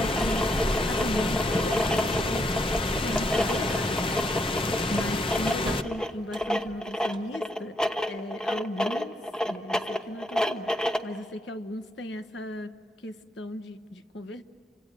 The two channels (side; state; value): both; normal; correlation 0.75